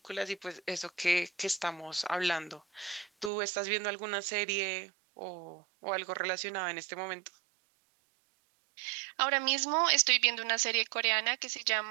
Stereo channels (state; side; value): drops out; left; at 3.3 s